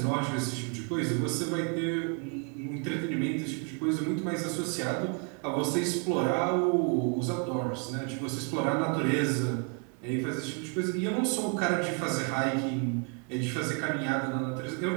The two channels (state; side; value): quieter; left; 39.2 dB